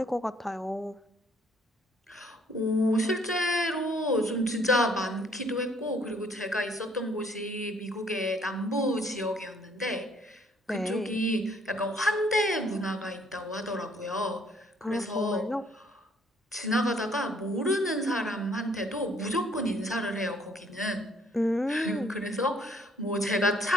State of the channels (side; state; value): both; normal; correlation 0.63